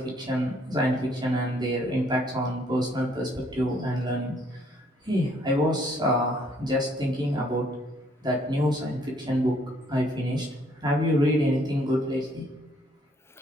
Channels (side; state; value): both; normal; correlation 0.65